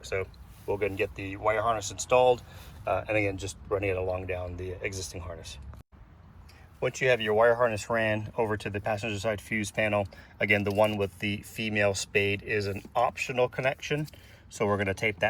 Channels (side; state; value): both; identical; correlation 1.00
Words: So we'll go and get the wire harness installed, and again, just running it along down the existing harness. Once you have your wire harness ran over to the passenger side fuse panel, again, the one with the female spade is an optional connection. So we're going to tape